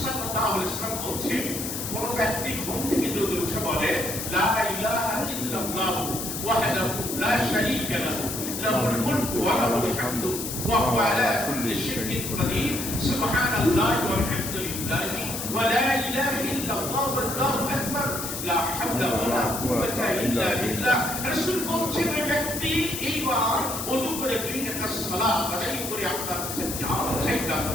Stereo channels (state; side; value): noise; left; hiss, 5 dB below the sound